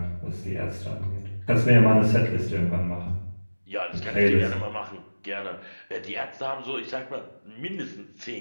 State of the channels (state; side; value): inverted; both; correlation -1.00